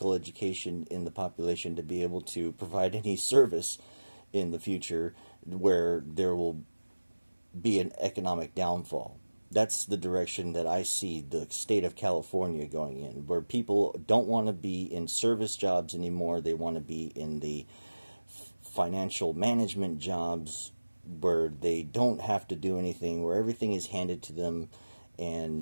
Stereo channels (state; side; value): inverted; both; correlation -1.00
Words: education, in the population to be able to provide any service in the future, where there will be an economic downfall. That's the direction that I see the state of California going in, where people don't want to be in service jobs anymore. They want to be in the financial management jobs, where they don't have to do anything, where everything is handed to them,